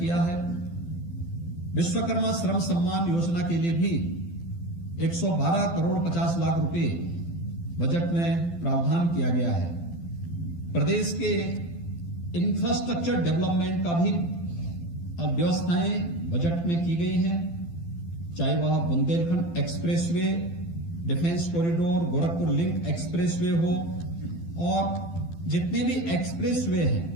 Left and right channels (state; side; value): late; right; 12 ms